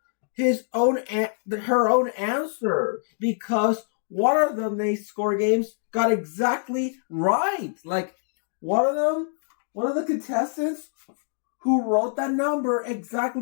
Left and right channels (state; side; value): silent; right; digital silence